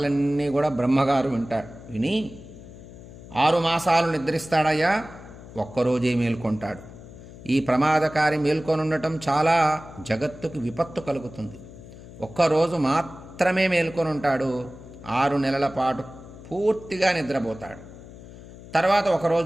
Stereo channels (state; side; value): noise; left; hum, 17 dB below the sound